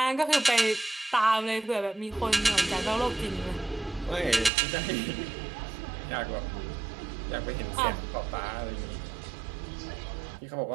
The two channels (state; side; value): drops out; left; at 4.5 s